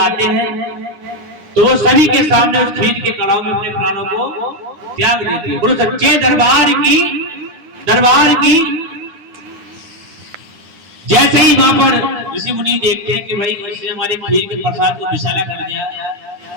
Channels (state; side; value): late; left; 9.9 ms